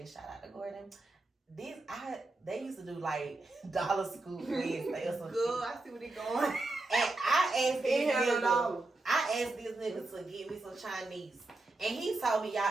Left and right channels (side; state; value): left; quieter; 3.0 dB